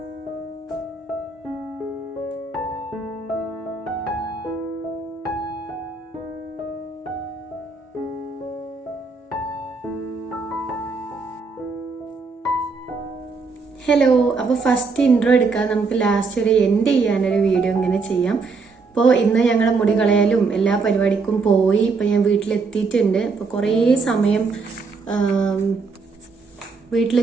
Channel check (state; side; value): quieter; left; 4.4 dB